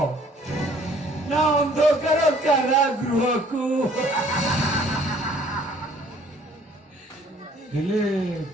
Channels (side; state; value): both; normal; correlation 0.58